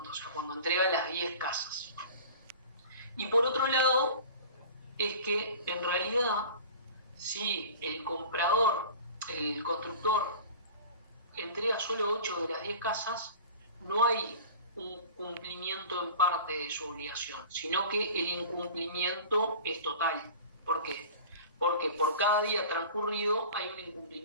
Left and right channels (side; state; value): both; inverted; correlation -0.40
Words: o sea, cuando entrega las 10 casas. Y por otro lado, es que en realidad, si el constructor entrega solo 8 de las 10 casas, no hay un cumplimiento en parte de su obligación, sino que el incumplimiento es total. ¿Por qué? Porque por cada día transcurrido hay un